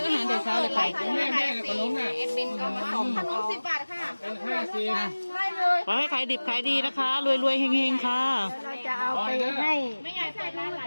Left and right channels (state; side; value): inverted; both; correlation -1.00